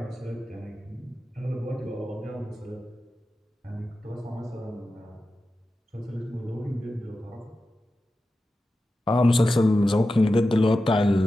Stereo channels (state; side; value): normal; both; correlation 0.92